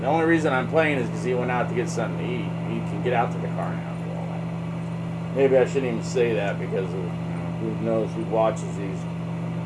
only reason I'm playing is because he went out to get something to eat. He can get out to the car now and do all that. Maybe I shouldn't even say that because of, who knows who watches these.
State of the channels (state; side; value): identical; both; correlation 1.00